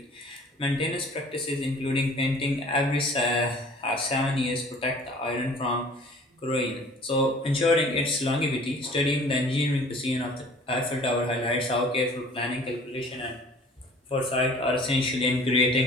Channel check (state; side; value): normal; both; correlation 0.49